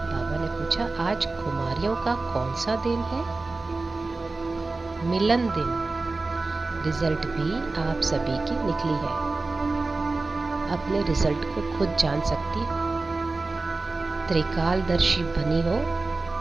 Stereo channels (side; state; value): left; quieter; 3.5 dB